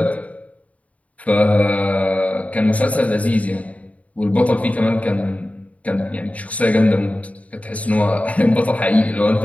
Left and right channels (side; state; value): right; late; 0.068 ms